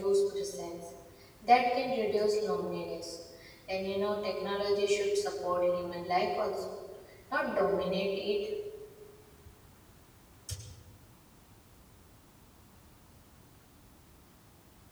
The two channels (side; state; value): both; identical; correlation 1.00